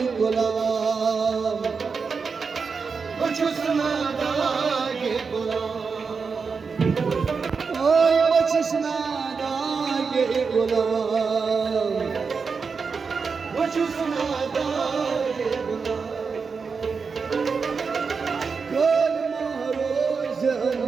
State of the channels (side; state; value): left; quieter; 5.2 dB